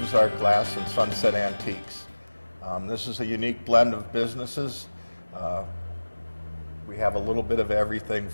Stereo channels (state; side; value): inverted; both; correlation -1.00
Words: Art Glass and Sunset Antiques. This is a unique blend of businesses. We have a little bit of everything